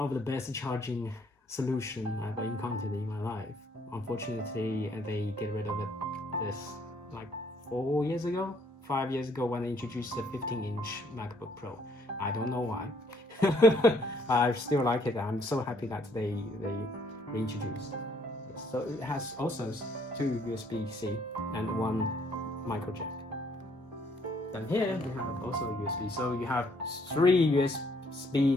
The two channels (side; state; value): both; normal; correlation 0.66